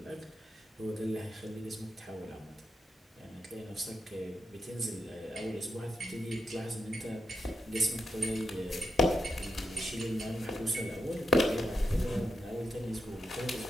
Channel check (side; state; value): both; normal; correlation 0.85